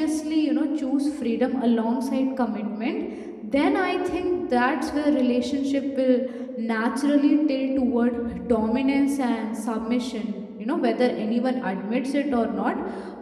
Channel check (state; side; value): identical; both; correlation 1.00